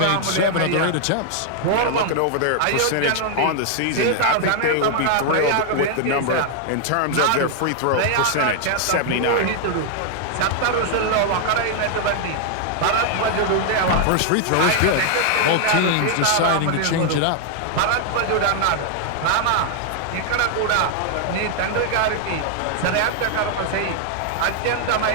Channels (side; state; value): both; different; correlation 0.00